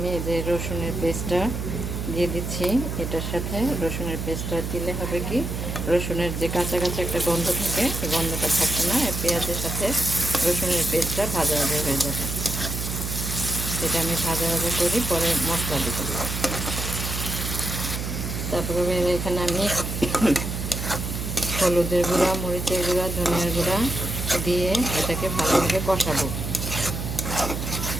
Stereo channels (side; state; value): right; noise; hum, 4 dB below the sound